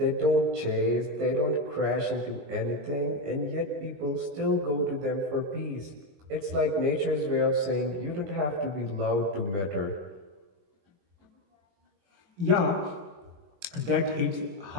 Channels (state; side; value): late; left; 22 ms